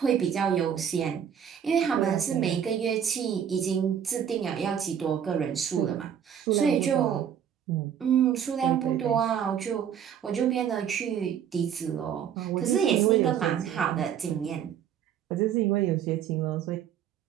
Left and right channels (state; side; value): quieter; left; 8.7 dB